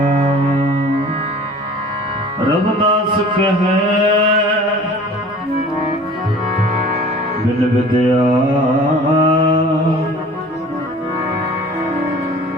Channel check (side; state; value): both; normal; correlation 0.46